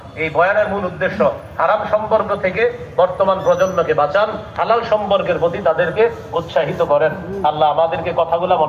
এই বয়ানের মূল উদ্দেশ্য হারাম সম্পর্ক থেকে বর্তমান প্রজন্মকে বাঁচান, হালাল সম্পর্কের প্রতি তাদেরকে উৎসাহিত করেন। আল্লাহ আমাদেরকে কথাগুলো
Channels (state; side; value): identical; both; correlation 1.00